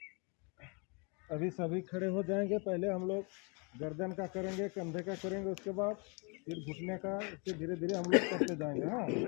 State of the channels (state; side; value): quieter; right; 33.0 dB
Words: अभी सभी खड़े हो जाएंगे। पहले हम लोग गर्दन का करेंगे, कंधे का करेंगे, उसके बाद फिर घुटने का, इससे धीरे धीरे हम लोग करते जाएंगे। हाँ,